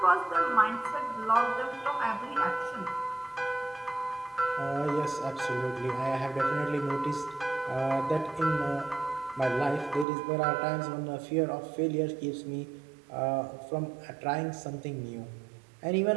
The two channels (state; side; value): drops out; left; at 10.1 s